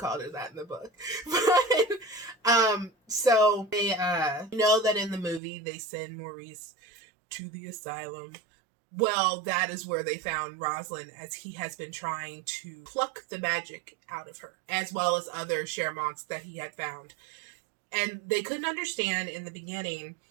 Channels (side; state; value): left; drops out; at 5.4 s